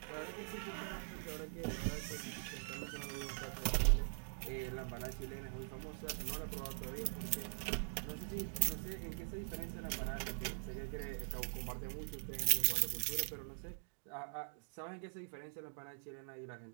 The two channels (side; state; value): left; silent; digital silence